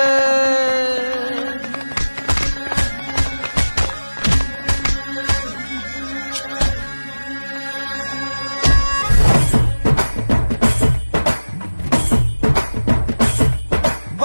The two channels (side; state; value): both; inverted; correlation -1.00